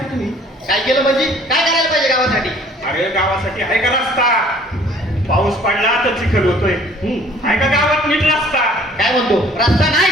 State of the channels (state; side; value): normal; both; correlation 0.55